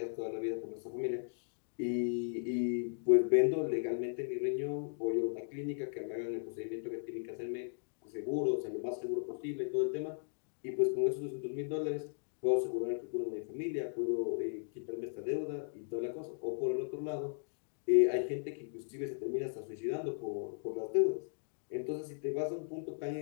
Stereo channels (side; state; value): right; silent; digital silence